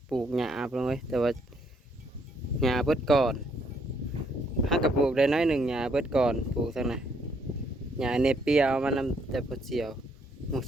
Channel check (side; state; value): both; normal; correlation 0.70